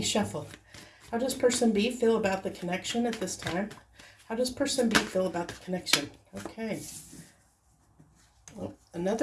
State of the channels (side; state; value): both; identical; correlation 1.00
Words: shuffle. How does person B feel about the connection at this time? How does person B feel about the connection? Okay. Well,